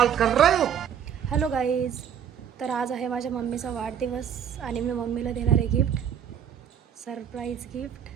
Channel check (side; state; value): left; quieter; 8.6 dB